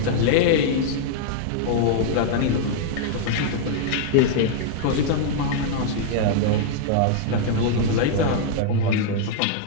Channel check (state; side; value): different; both; correlation -0.01